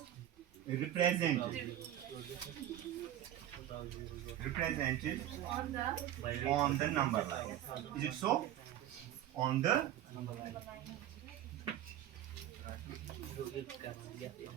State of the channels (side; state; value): left; quieter; 12.0 dB